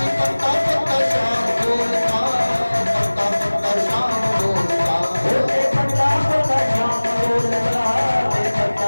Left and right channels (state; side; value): inverted; both; correlation -1.00